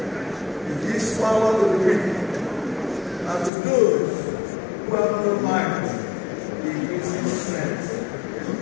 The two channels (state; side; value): drops out; right; at 3.5 s